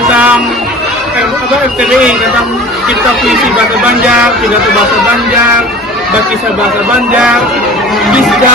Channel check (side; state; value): both; normal; correlation 0.41